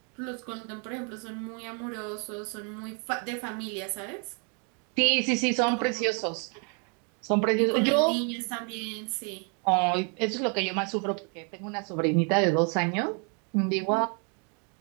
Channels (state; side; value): quieter; left; 37.8 dB